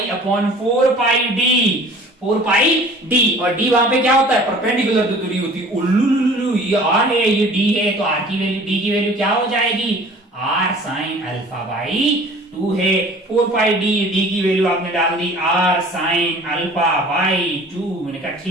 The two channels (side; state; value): both; normal; correlation 0.47